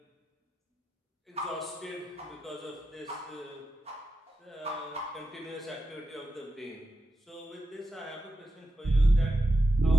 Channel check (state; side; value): normal; both; correlation 0.89